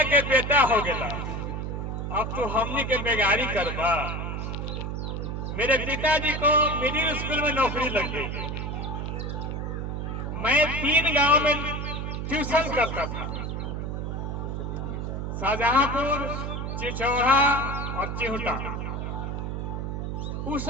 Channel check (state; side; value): noise; right; hum, 3 dB below the sound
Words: के बेटा हो गया, अब तू हमनी के बेगारी करबा। मेरे पिताजी को मिडिल स्कूल में नौकरी लग गई। मैं 3 गांव में ट्यूशन करता था, शाहजहांपुर, चिचौड़ा और चिहुटा। उस